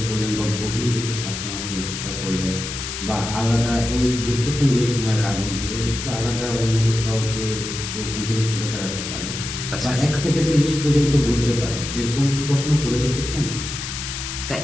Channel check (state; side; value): noise; left; hiss, 6 dB below the sound